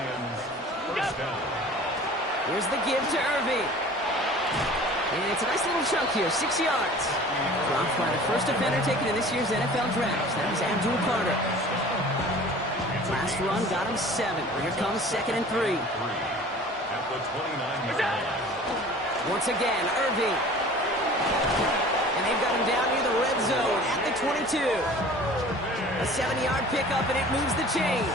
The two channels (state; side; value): normal; both; correlation 0.44